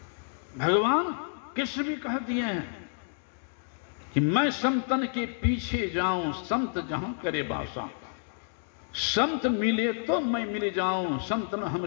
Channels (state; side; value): silent; right; digital silence